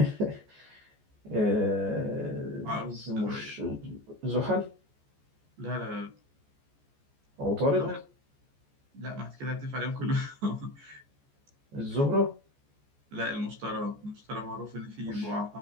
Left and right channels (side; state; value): left; late; 14 ms